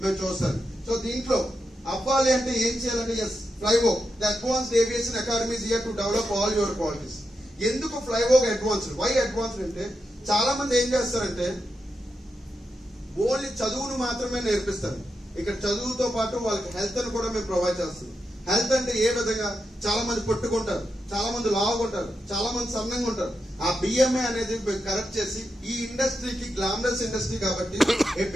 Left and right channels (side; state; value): both; normal; correlation 0.87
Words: మేము చూస్తాను. సో దీంట్లో అవ్వాలి అంటే ఏం చేయాలంటే FlyVogue, the advanced aviation academy is here to develop all your qualities. ఎందుకు ఫ్లైవోగ్ అడ్వాన్స్డ్? వై అడ్వాన్స్డ్ అంటే చాలా మంది ఏం చేస్తారంటే ఓన్లీ చదువును మాత్రమే నేర్పిస్తారు. ఇక్కడ చదువుతో పాటు వాళ్ళకి హెల్త్ అని కూడా మేము ప్రొవైడ్ చేస్తాం. హెల్త్ అంటే ఏ విధంగా? చాలా మంది పట్టుకుంటారు, చాలా మంది లావుకుంటారు, చాలా మంది సన్నంగా ఉంటారు. ఆ బిఎంఏ అనేది కరెక్ట్ చేసి, ఈ ఇండస్ట్రీకి గ్లామరస్ ఇండస్ట్రీ కాబట్టి